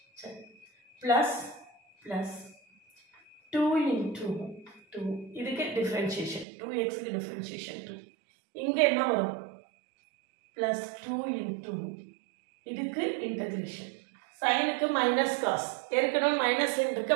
சரி. plus 2 into 2 இதுக்கு டிஃபரன்ஷியேஷன் 2x க்கு டிஃபரன்ஷியேஷன் 2. இங்க என்ன வரும்? plus 2 into இதுக்கு இன்டகிரேஷன். sin க்கு minus cos, ஏற்கனவே மைனஸ் இருக்கு,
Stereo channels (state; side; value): drops out; left; at 6.5 s